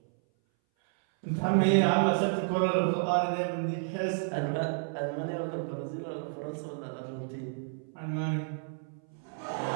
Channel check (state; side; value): silent; left; 57 dB below the other